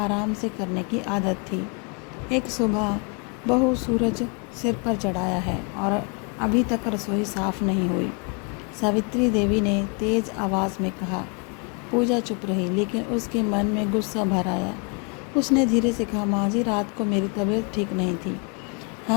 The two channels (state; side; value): quieter; right; 34.1 dB